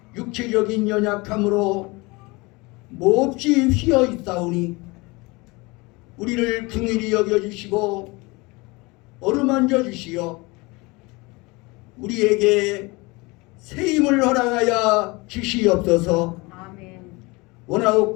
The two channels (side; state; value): right; quieter; 24.8 dB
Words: 육체적인 연약함으로 몹시 휘어 있사오니 우리를 긍휼히 여겨주시고 어루만져 주시어 우리에게 새 힘을 허락하여 주시옵소서. 아멘.